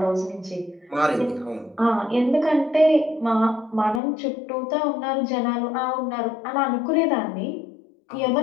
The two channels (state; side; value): drops out; right; at 4.0 s